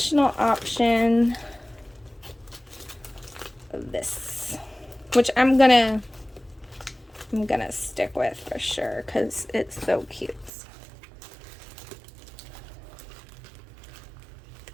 option of this, which I'm gonna stick with for sure because it's so cute.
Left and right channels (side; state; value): left; drops out; at 10.5 s